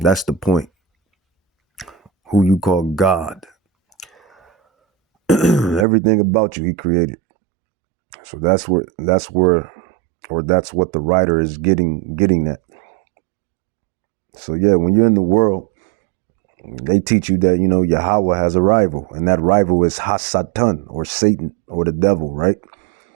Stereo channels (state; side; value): drops out; left; at 5.9 s